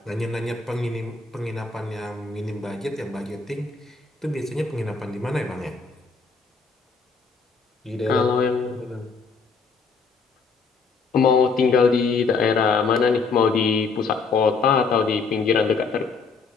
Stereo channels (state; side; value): quieter; right; 4.7 dB